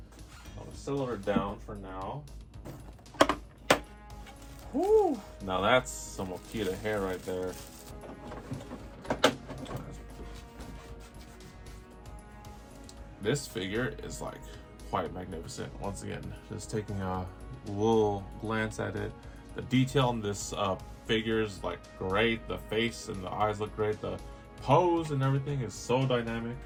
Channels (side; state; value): both; identical; correlation 1.00